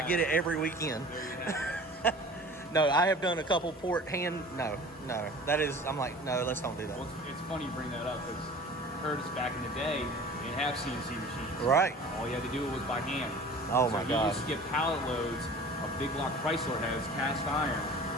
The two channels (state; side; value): normal; both; correlation 0.43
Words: get it every weekend. No, I have done a couple port hand. No. That is. I'm like, no. Let's don't do that. Well, it's funny you bring that up because Curtis back in the day didn't have CNC machines. Right. All you had to do was by hand. Oh my He God. used to get pallet loads of big block Chrysler heads, cast iron.